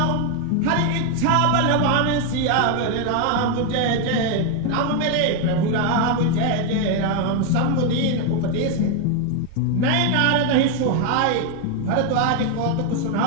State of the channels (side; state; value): both; different; correlation 0.01